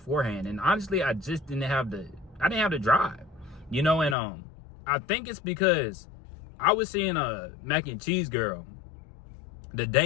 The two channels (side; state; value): right; drops out; at 4.2 s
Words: And honestly, I just didn't have the drive, you know. And I think it's because I was seeing a mac and cheese girl the